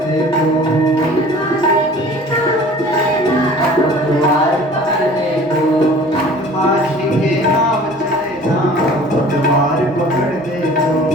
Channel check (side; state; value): both; normal; correlation 0.46